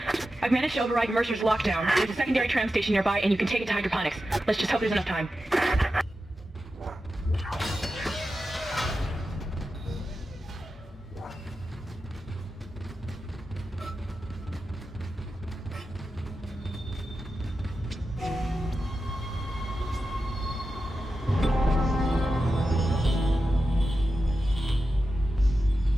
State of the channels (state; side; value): normal; both; correlation 0.91